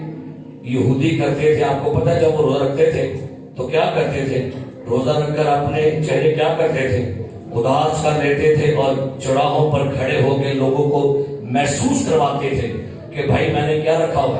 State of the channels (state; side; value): identical; both; correlation 1.00